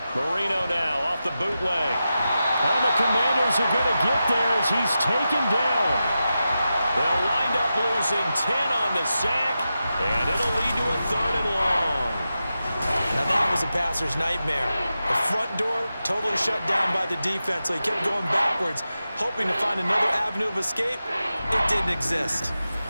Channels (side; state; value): both; inverted; correlation -0.91